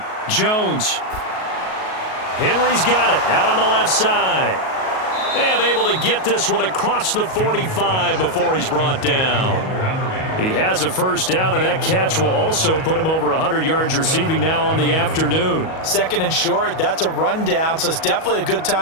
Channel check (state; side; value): late; right; 38 ms